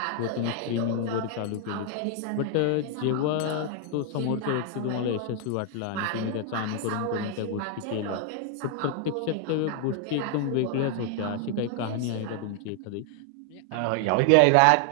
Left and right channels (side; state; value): both; different; correlation 0.00